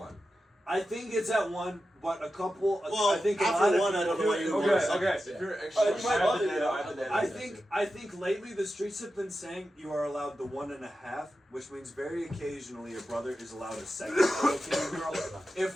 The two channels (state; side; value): normal; both; correlation 0.91